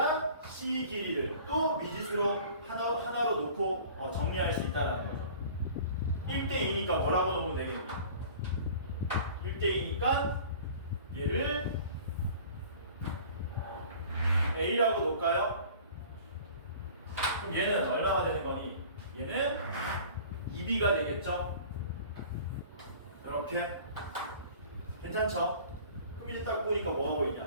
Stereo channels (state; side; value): inverted; both; correlation -0.45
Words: C 길이를 또 미지수로 하나로 놓고 정리할 수 있다는 거죠. 1대2니까 뭐라고 놓으면 되겠니? 1대2니까 얘를 A라고 놓을까요? 그럼 얘는 얼마가 되는 거니? 얘는 2B가 되겠죠? 이렇게. 괜찮죠? 그럼 이제 딱 보니까 뭐가